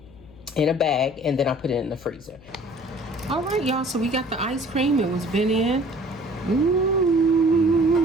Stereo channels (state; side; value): noise; left; hum, 23 dB below the sound